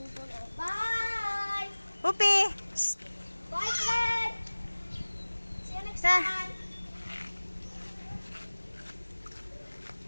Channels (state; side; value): inverted; both; correlation -1.00